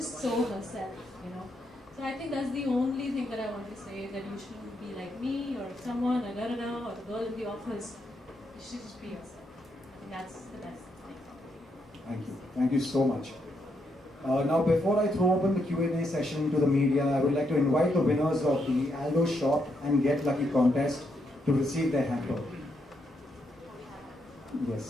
so herself, So I think that's the only thing that I want to say, that you shouldn't be like me, or someone, or da-da-da, or the girl in the office. You should just be yourself. I think that's the best thing. Thank you. Thank you so much. Now, before I throw open the Q&A session to the media, I would like to invite the winners of the Aldo Shop and Get Lucky contest to receive their hamper.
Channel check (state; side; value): normal; both; correlation 0.79